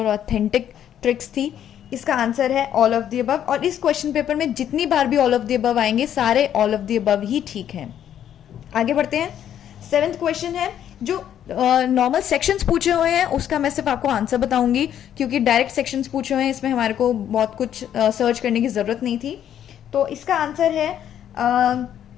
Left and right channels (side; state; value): right; quieter; 10.2 dB